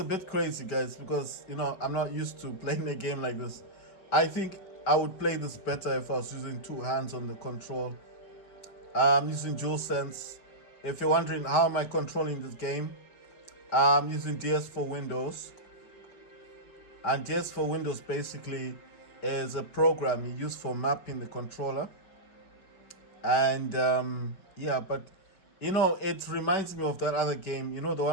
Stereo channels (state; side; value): late; right; 5.2 ms